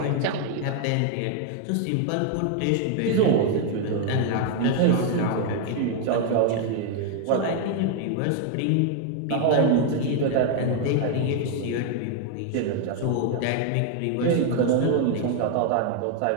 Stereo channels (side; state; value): both; different; correlation 0.00